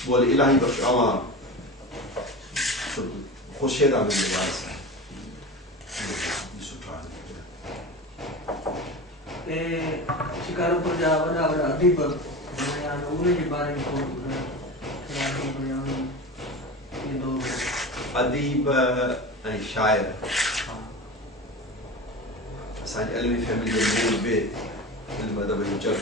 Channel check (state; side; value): normal; both; correlation 0.29